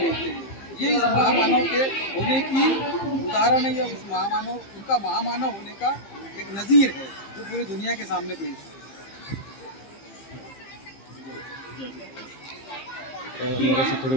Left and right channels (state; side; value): late; right; 15 ms